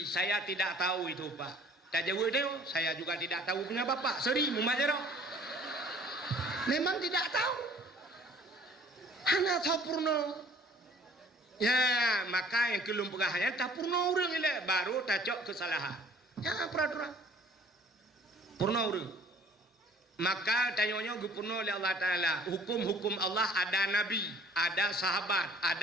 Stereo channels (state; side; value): normal; both; correlation 0.53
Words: saya tidak tahu itu pak. Tak jawab dia, saya juga tidak tahu punya bapak. Seri, mumajarah. Memang tidak tahu. Hanya tahu purno. Ya, maka yang kelum pegahannya tak purno orang ini baru tacok kesalahan. Ya, peraturan. Purna urang. Maka tanyanya gupurna oleh Allah Ta'ala. Hukum-hukum Allah ada Nabi, ada sahabat,